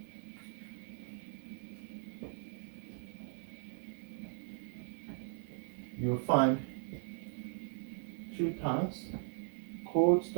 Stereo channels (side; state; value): left; silent; 52 dB below the other